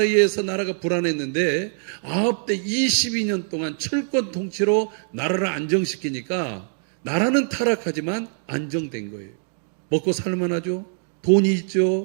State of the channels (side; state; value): left; silent; 63 dB below the other